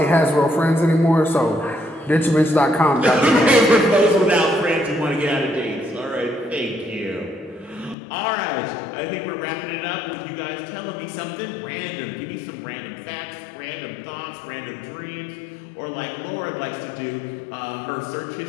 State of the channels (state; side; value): drops out; right; at 8.0 s